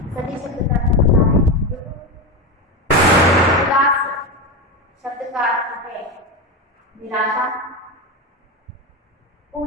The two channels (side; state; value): both; normal; correlation 0.16